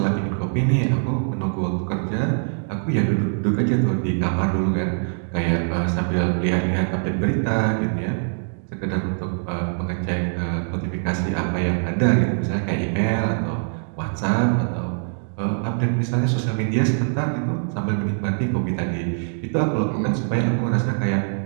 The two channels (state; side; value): silent; left; 63 dB below the other